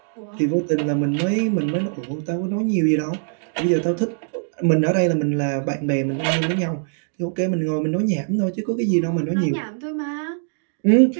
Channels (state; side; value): silent; left; digital silence